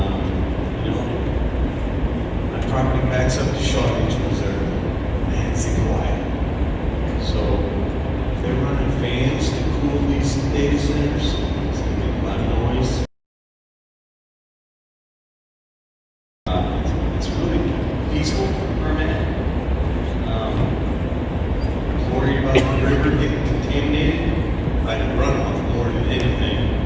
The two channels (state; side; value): identical; both; correlation 1.00